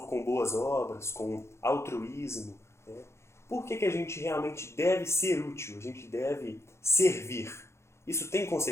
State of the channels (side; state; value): right; late; 0.13 ms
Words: com boas obras, com altruísmo, né? Por que a gente realmente deve ser útil? A gente deve servir. Isso tem